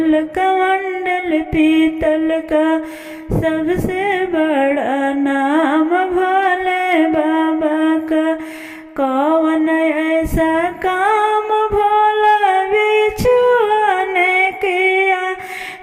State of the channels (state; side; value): identical; both; correlation 1.00